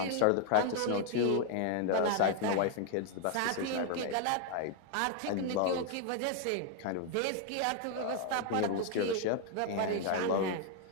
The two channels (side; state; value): both; different; correlation 0.00